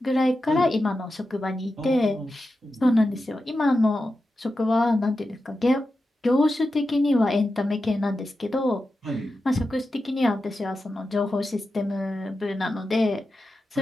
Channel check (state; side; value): normal; both; correlation 0.91